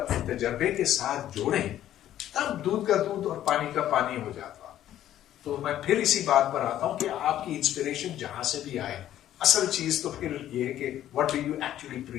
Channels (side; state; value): right; quieter; 12.2 dB